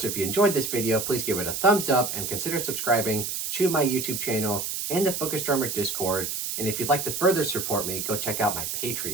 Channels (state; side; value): noise; right; hiss, 3 dB below the sound